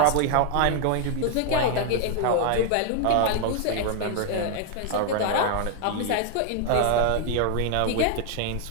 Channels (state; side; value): different; both; correlation 0.00